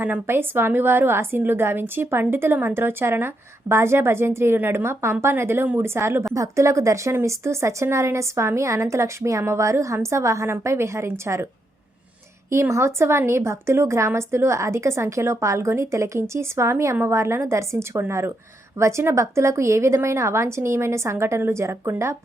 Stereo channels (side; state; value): both; normal; correlation 0.80